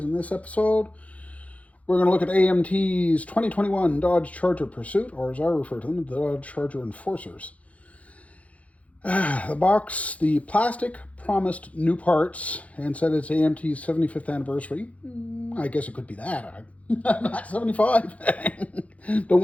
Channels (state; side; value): late; right; 0.066 ms